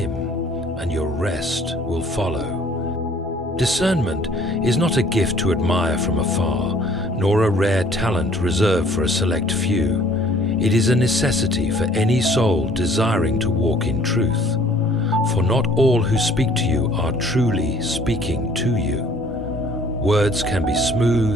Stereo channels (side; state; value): both; normal; correlation 0.56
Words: and your rest will follow. Discernment is not a gift to admire from afar, nor a rare talent reserved for a select few. It is a necessity for any soul desiring to walk in truth. For not all who speak to you are truly speaking to you. Words can be